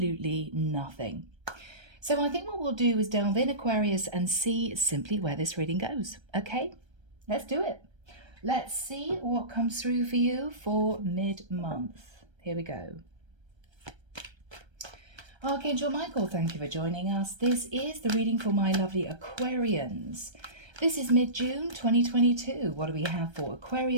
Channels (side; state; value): left; late; 1.3 ms